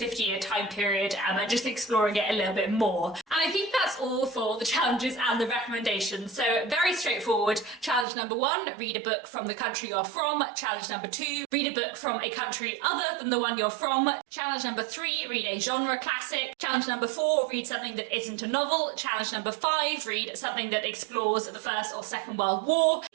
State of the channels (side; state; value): left; drops out; at 8.1 s